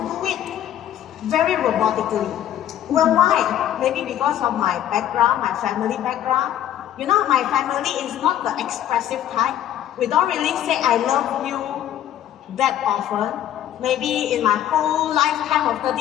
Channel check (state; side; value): quieter; right; 11.4 dB